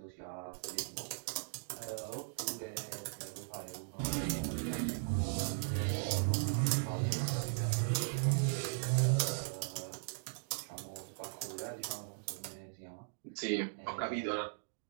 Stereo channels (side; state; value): left; silent; digital silence